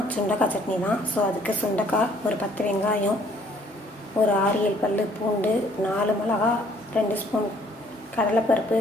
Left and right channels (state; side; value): normal; both; correlation 0.61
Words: சுண்டக்காய் சட்னி தான். ஸோ அதுக்கு சுண்டக்காய், ஒரு 10 வெங்காயம், ஒரு 6-7 பல் பூண்டு, 4 மிளகா, 2 ஸ்பூன் கடலைப்பருப்பு,